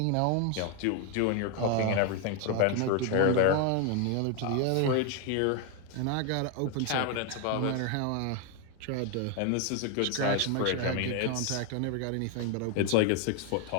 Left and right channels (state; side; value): different; both; correlation 0.01